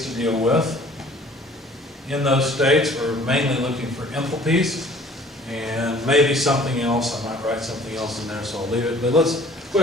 to deal with. In those states, we're mainly looking for enthalpies and maybe something else. I might write something else in there, so I'll leave it. But let's go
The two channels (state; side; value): normal; both; correlation 0.52